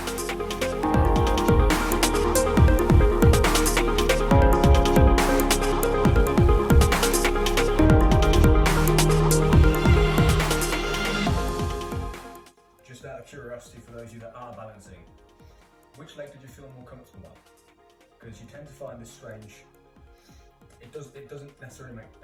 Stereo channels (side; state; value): both; identical; correlation 1.00